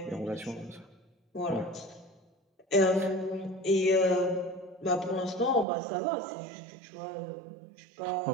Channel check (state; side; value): drops out; left; at 5.7 s